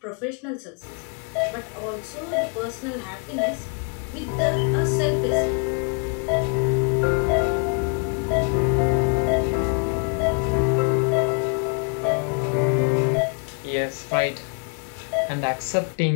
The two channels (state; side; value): quieter; right; 39.9 dB